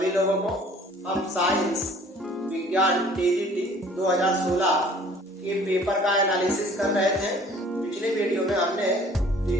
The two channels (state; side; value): normal; both; correlation 0.53